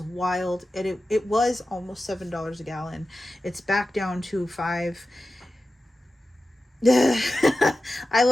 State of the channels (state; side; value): normal; both; correlation 0.93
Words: wild. And it was almost $7 a gallon. It's back down to 5. I